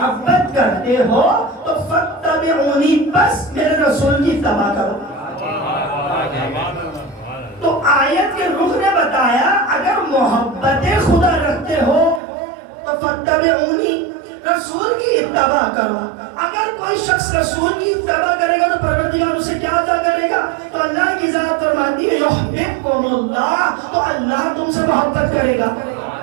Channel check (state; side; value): drops out; left; at 12.2 s